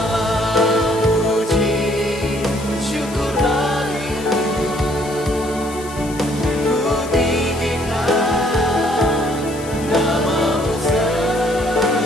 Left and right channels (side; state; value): left; noise; hiss, 16 dB below the sound